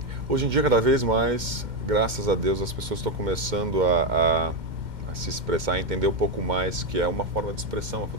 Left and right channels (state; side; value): late; left; 2.1 ms